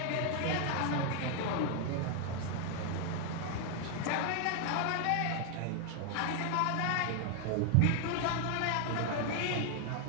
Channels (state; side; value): different; both; correlation 0.00